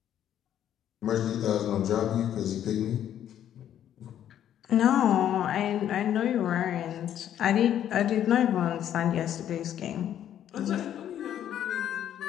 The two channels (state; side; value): quieter; right; 10.6 dB